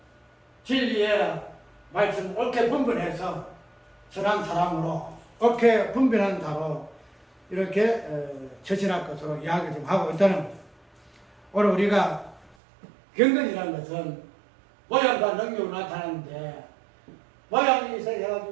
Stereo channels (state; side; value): drops out; left; at 12.6 s